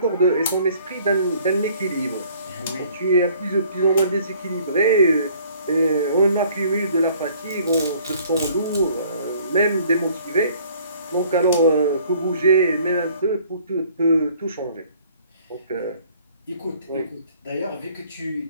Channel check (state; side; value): inverted; both; correlation -0.57